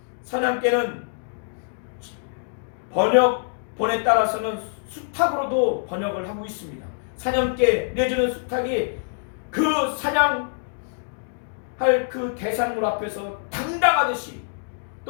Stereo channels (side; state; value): right; silent; digital silence